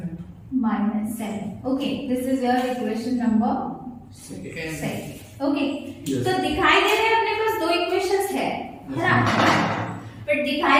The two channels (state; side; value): identical; both; correlation 1.00